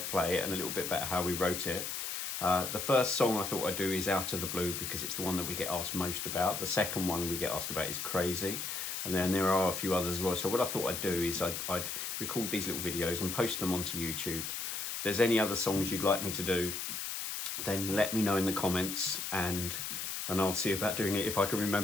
it and a little bit about how we wrote it. The first song I thought I'd do is Out of the Blue because it's the one that we get asked most about. The second one we get asked about is Crazy. And then there are a few others as well. So what I thought I'd do is I'd record these little videos and post them onto YouTube. If there's any other songs you'd like me to do, then let me know in the comments and I'll see about doing it if I can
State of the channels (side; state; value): left; noise; hiss, 4 dB below the sound